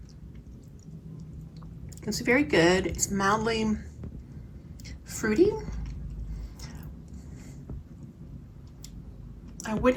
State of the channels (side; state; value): both; identical; correlation 1.00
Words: It's very good. It's mildly fruity. I